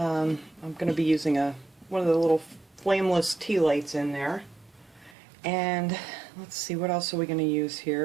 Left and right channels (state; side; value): drops out; left; at 5.2 s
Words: going to be using one of the little flameless tea lights in there. And let's see, what else are we going to use